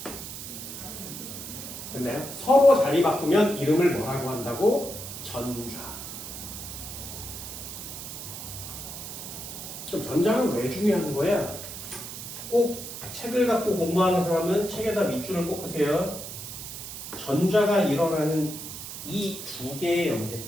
됐나요? 서로 자리 바꾸면 이름을 뭐라고 한다고? 전좌. 그럼 전자는 왜 중요한 거야? 꼭 책을 갖고 공부하는 사람은 책에다 밑줄을 꽂으세요. 전자가 일어나는 이 두 개의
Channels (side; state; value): right; noise; hiss, 9 dB below the sound